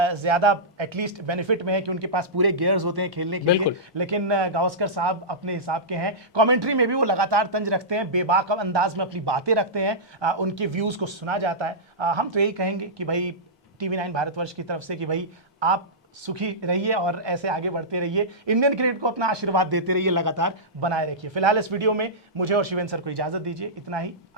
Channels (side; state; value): both; normal; correlation -0.15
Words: ज़्यादा एटलीस्ट बेनिफिट में है कि उनके पास पूरे गियर्स होते हैं खेलने के लिए, लेकिन गावस्कर साहब अपने हिसाब के हैं। कमेंट्री में भी वो लगातार तंज रखते हैं, बेबाक अंदाज में अपनी बातें रखते हैं, उनके व्यूज़ को सुना जाता है। हम तो यही कहेंगे कि भाई TV9 भारतवर्ष की तरफ से कि भाई आप सुखी रहिए और ऐसे आगे बढ़ते रहिए, इंडियन क्रिकेट को अपना आशीर्वाद देते रहिए, लगातार बनाए रखिए। फिलहाल इस वीडियो में मुझे और शिवेंद्र सर को इजाजत दीजिए, इतना ही।